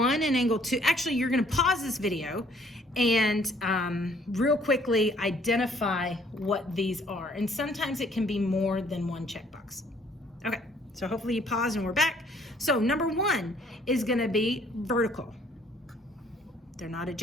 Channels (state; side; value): normal; both; correlation 0.62